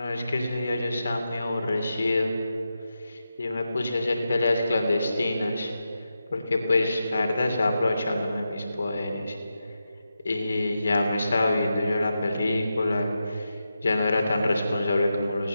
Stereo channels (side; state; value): both; inverted; correlation -0.89